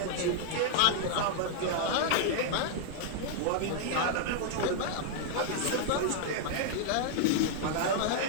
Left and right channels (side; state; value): both; different; correlation -0.01